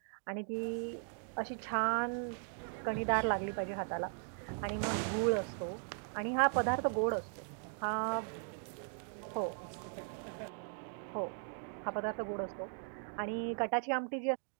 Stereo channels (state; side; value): silent; left; 52 dB below the other